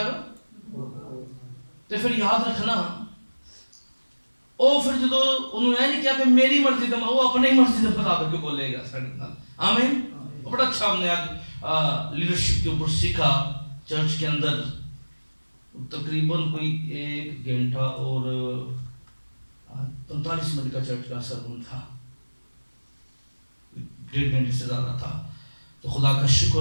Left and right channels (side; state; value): both; inverted; correlation -1.00